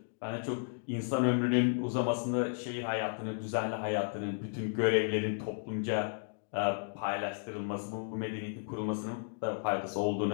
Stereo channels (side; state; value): right; silent; digital silence